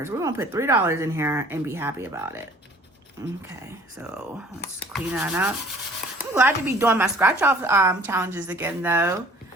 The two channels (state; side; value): normal; both; correlation 0.52